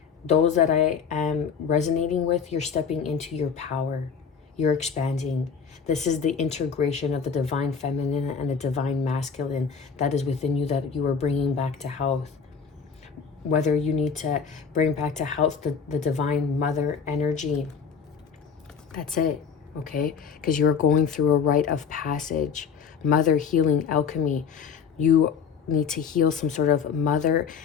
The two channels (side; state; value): right; quieter; 6.4 dB